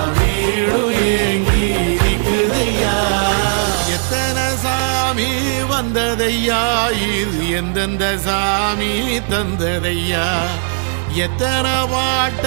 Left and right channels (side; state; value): left; silent; 64 dB below the other